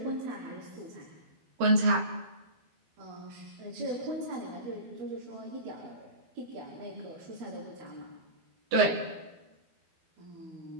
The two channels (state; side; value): late; left; 12 ms